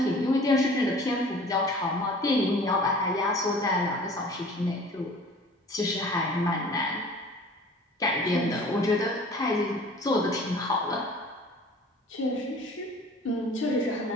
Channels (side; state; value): both; normal; correlation 0.46